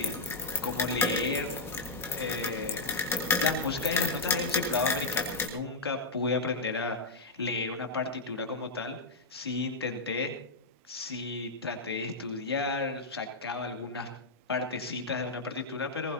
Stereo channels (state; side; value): quieter; right; 3.2 dB